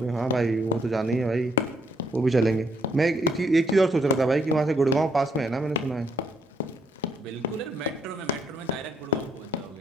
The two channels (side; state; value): both; normal; correlation 0.72